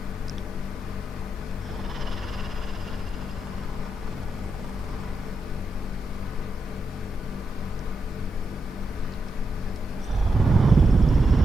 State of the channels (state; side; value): normal; both; correlation 0.85